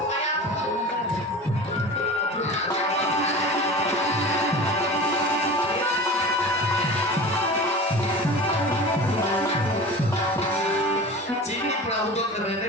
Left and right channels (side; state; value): both; normal; correlation 0.35